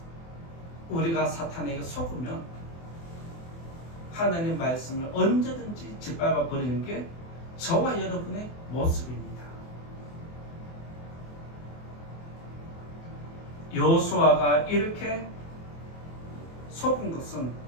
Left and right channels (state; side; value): late; right; 24 ms